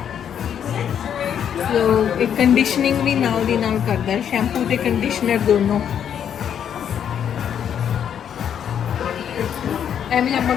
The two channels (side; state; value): right; quieter; 8.8 dB